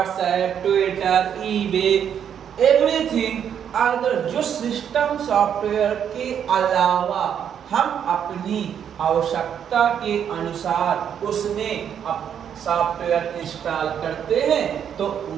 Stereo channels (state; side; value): quieter; left; 8.6 dB